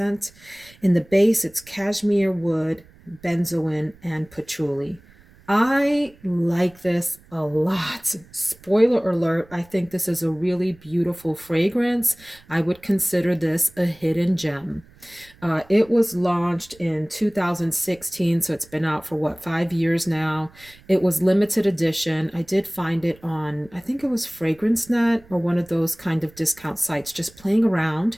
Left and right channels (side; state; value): right; noise; rumble, 26 dB below the sound